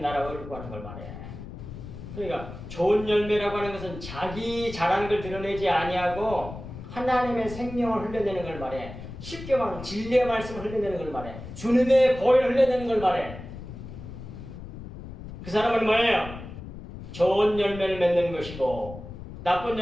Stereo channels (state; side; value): noise; left; rumble, 12 dB below the sound